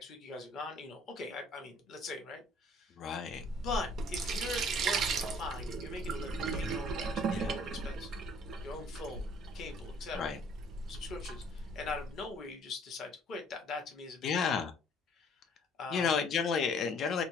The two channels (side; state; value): both; normal; correlation 0.57